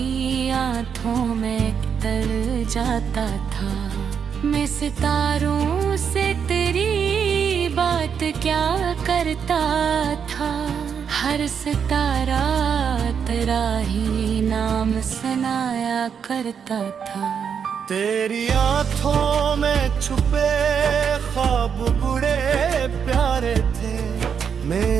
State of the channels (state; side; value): quieter; left; 7.1 dB